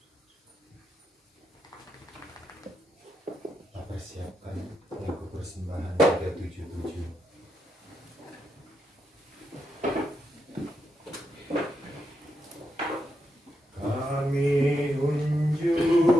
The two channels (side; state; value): both; normal; correlation 0.83